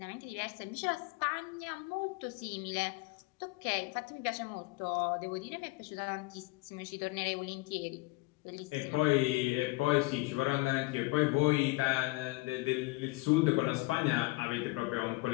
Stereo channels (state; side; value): quieter; right; 23.5 dB